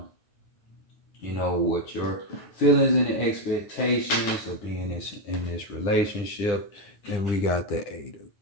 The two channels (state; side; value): late; right; 9.8 ms